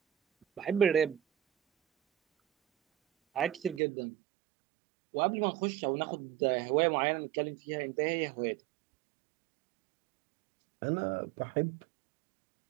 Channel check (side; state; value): left; drops out; at 3.8 s